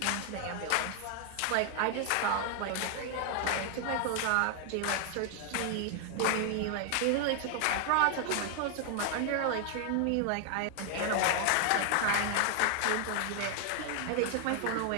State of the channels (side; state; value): both; different; correlation 0.00